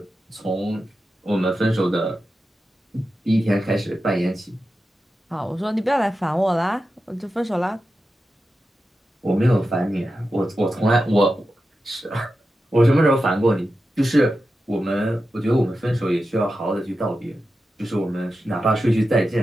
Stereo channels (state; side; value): normal; both; correlation 0.91